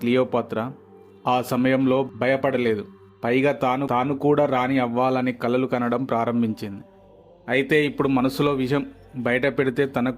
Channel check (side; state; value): both; identical; correlation 1.00